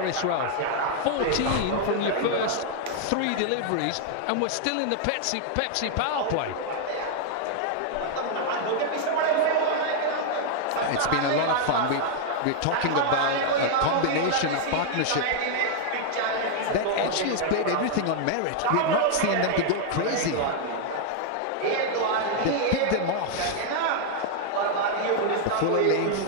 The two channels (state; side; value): different; both; correlation 0.00